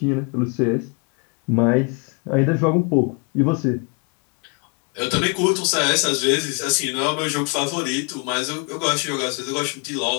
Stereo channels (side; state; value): right; quieter; 34.1 dB